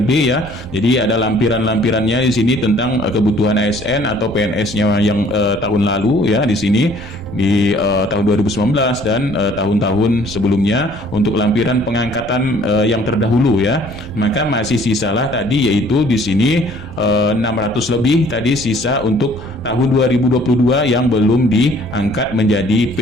ya. Jadi ada lampirannya di sini tentang kebutuhan ASN atau PNS-nya yang tahun lalu ya, di sini di tahun 2019 dan tahun-tahun sebelumnya untuk lampiran pengangkatan yang terdahulu ya. Maka masih sisalah tadi, yaitu di sini 600 lebih tadi sisa untuk tahun 2022 yang belum diangkat menjadi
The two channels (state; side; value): noise; right; rumble, 13 dB below the sound